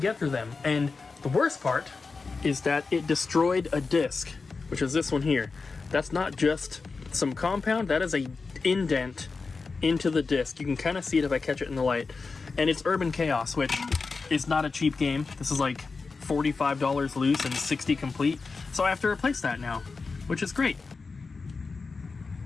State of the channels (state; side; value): quieter; right; 4.4 dB